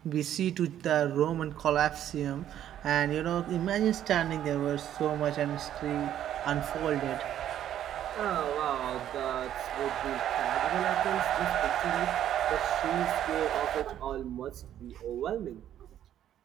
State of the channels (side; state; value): left; quieter; 11.0 dB